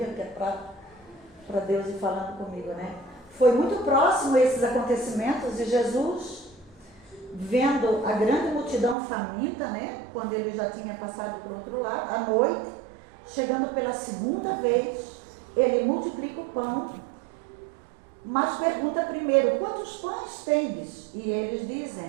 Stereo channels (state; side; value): drops out; left; at 9.0 s